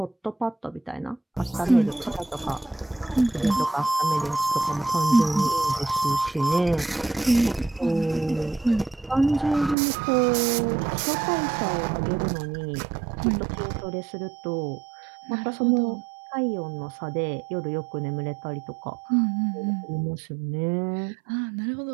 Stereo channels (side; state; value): left; drops out; at 9.8 s